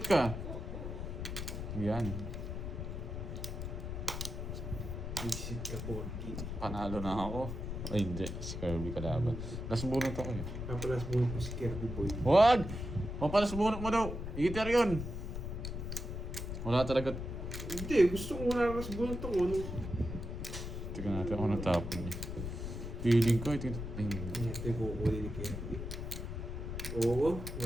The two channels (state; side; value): noise; left; rumble, 5 dB below the sound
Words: ka! Yan. Visit ka, Borgi. Panalo na ako. Ay, hindi. Si Kirby kalaban. Last bunot ako yun. Kapalas bunot mo si Kirby Boy. Wag! Papalas bunot mo daw. Igiter yun. Wala talaga. Hindi, gusto ko wala nas bunot ako. Tingnan natin ako natapon niya. Feeling ko, ito. Ay, Ito yung kukunin ni Kirby. Oo,